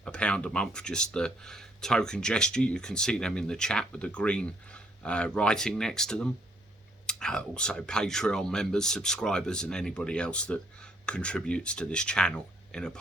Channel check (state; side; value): normal; both; correlation 0.68